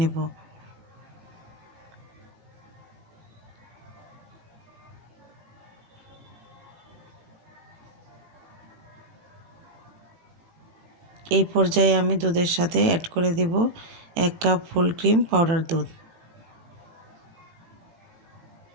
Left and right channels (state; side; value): late; left; 18 ms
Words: নেব। এই পর্যায়ে আমি দুধের সাথে অ্যাড করে দেব 1 কাপ ফুল ক্রিম পাউডার দুধ।